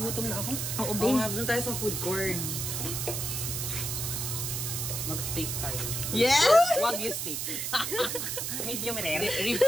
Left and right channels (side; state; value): right; noise; hiss, 2 dB below the sound